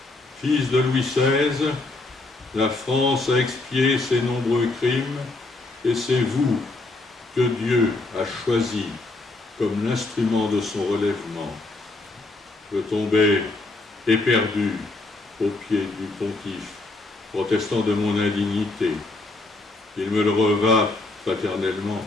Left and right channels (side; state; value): right; quieter; 3.1 dB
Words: Fils de Louis XVI, la France a expié ses nombreux crimes et c'est vous que Dieu a choisi comme l'instrument de son relèvement. Je tombai éperdu aux pieds du pontife, protestant de mon indignité. Il me le revint fraternellement.